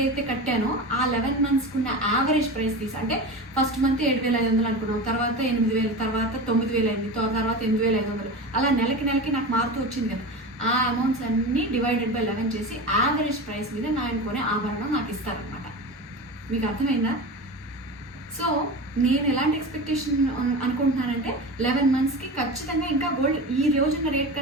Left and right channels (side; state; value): both; normal; correlation 0.28